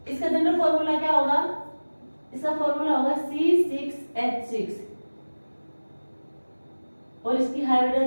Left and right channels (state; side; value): inverted; both; correlation -1.00